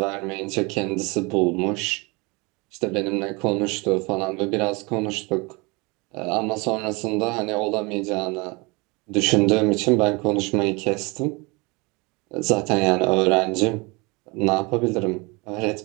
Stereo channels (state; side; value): quieter; left; 27.2 dB